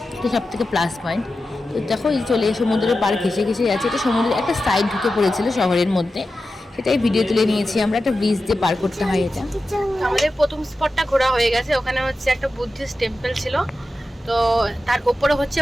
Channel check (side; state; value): both; normal; correlation 0.92